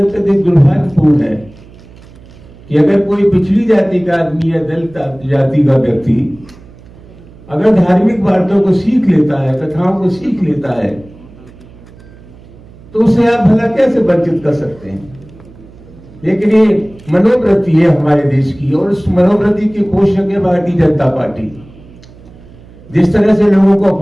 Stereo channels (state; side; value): noise; right; hum, 22 dB below the sound